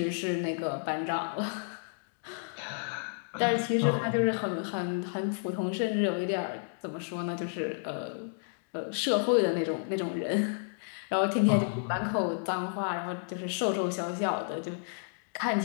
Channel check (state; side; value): silent; right; digital silence